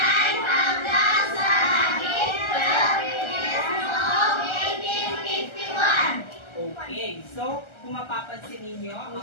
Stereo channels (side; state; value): right; late; 1.3 ms